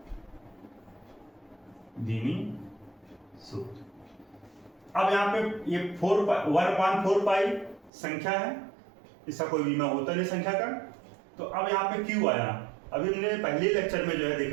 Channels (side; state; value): left; drops out; at 7.9 s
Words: विमीय सूत्र। अब यहाँ पे ये 1/4π संख्या है, इसका कोई विमीय होता नहीं संख्या का। तो अब यहाँ पे Q आया, अभी हमने पहले लेक्चर में जो है